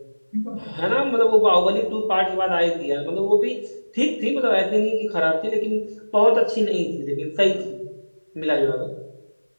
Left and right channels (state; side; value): inverted; both; correlation -1.00